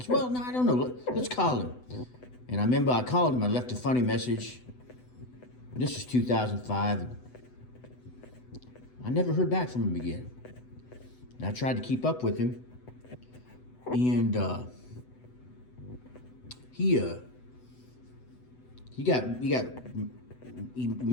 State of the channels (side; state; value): right; late; 8.0 ms